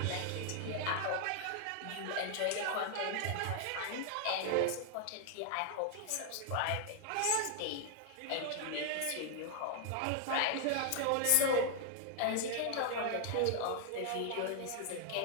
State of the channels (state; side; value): different; both; correlation 0.00